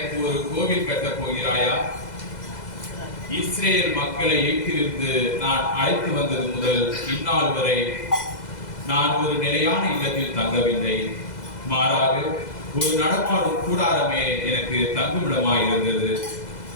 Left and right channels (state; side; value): late; right; 2.0 ms